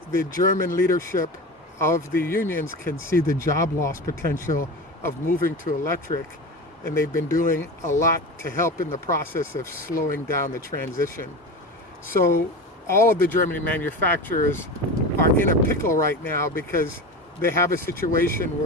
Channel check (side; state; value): both; normal; correlation 0.28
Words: the German leadership of the unions can see the job loss potential of moving to electric, and they've been doing a lot to help in the process of slowing down the transition. So all of the German manufacturers are in a pickle right now because they have a situation